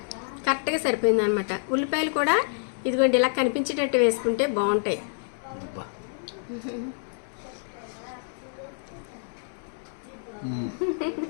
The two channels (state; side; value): silent; right; digital silence